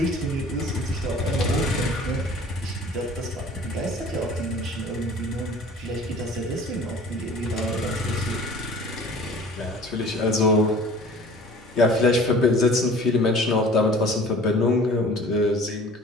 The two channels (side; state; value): both; normal; correlation 0.47